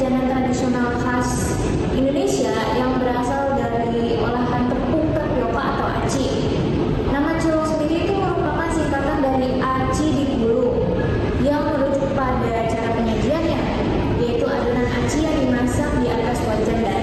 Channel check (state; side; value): identical; both; correlation 1.00